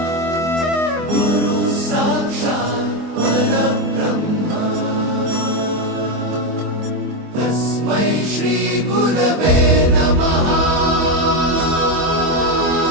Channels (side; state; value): left; late; 24 ms